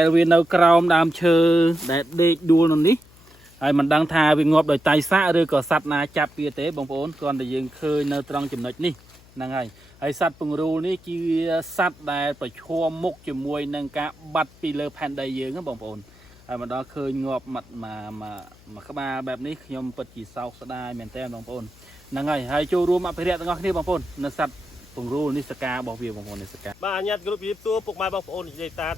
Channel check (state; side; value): noise; left; hum, 26 dB below the sound